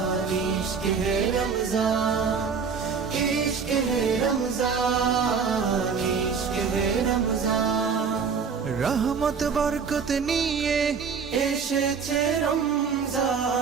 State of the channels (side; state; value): left; quieter; 5.9 dB